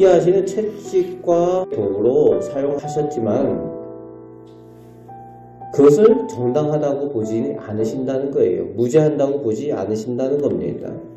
채찍과 도구로 사용하셨지만 그것을 정당하다고 보지 않으신다는 거예요. 무죄한다고 보지 않으신다는 겁니다.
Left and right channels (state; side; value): identical; both; correlation 1.00